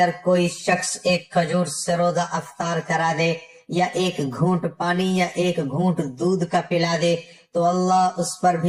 کوئی شخص ایک کھجور سے روزہ افطار کرا دے یا ایک گھونٹ پانی یا ایک گھونٹ دودھ کا پلا دے تو اللہ اس پر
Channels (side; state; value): both; identical; correlation 1.00